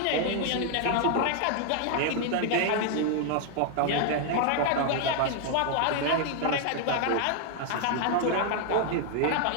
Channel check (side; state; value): both; different; correlation 0.00